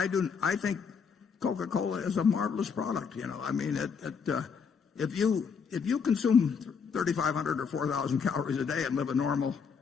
think Coca-Cola is a marvelous product. I mean, if you consume 3,500 or 4,000 calories a day and live a normal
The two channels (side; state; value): right; quieter; 6.1 dB